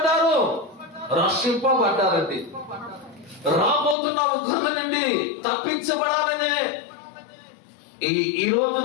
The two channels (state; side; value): drops out; right; at 4.0 s